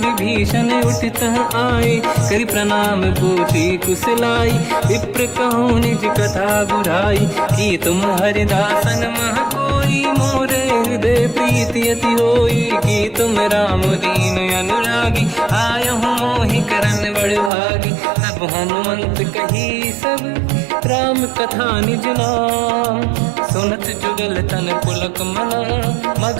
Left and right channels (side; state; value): left; drops out; at 17.5 s